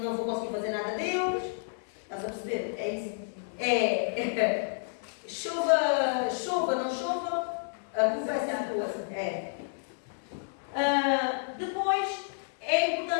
vou conseguir fazer nada deles. Estás a perceber? É isso. Chova, não chova, a culpa é sempre tua. Depois, é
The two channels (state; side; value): silent; right; digital silence